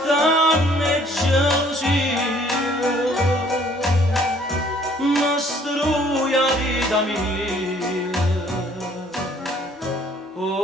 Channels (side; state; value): both; normal; correlation 0.59